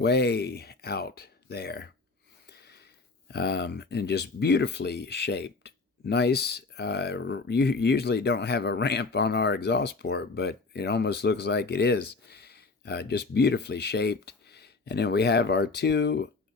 out there, and just beautifully shaped. Nice. You usually don't have a ramp on our exhaust port, but it almost looks like it is. Just beautifully shaped. And then we have our 2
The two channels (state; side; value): quieter; right; 3.9 dB